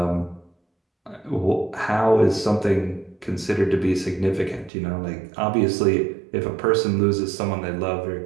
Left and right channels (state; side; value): drops out; left; at 4.7 s